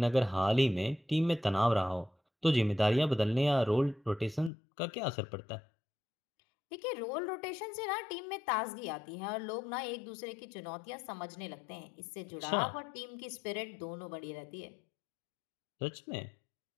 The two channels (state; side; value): drops out; right; at 4.5 s